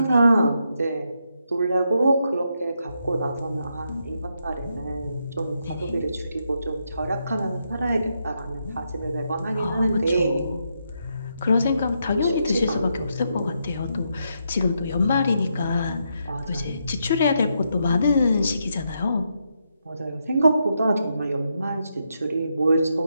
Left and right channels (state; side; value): inverted; both; correlation -0.81